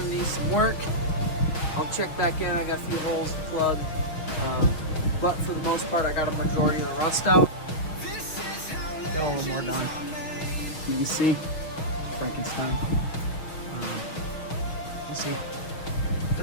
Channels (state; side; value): late; right; 6.3 ms